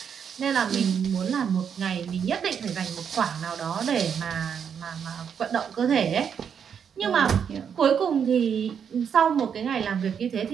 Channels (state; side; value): quieter; left; 7.5 dB